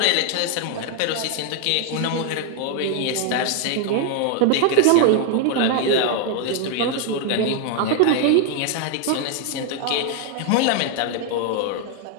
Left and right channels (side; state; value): both; different; correlation 0.00